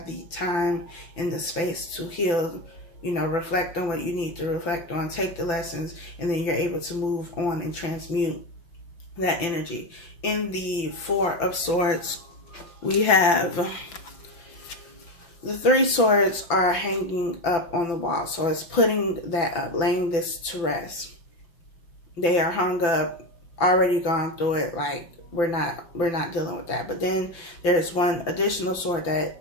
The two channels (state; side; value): late; right; 5.9 ms